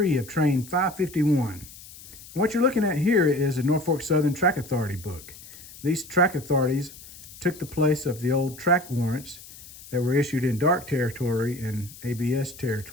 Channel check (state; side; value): noise; left; hiss, 18 dB below the sound